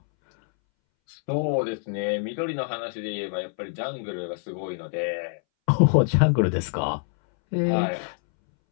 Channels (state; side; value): silent; right; 61 dB below the other